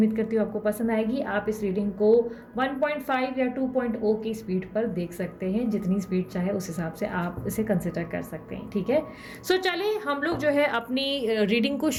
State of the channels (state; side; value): identical; both; correlation 1.00